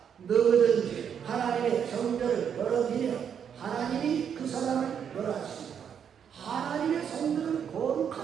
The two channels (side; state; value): left; quieter; 8.0 dB